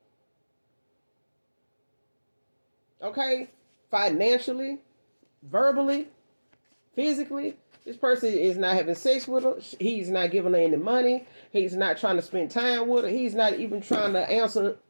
Okay? Financially, verbally, physically, this person is not having sex with her. He's not giving her any money. He's not trying to spend time with her. He's not even trying to answer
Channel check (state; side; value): inverted; both; correlation -1.00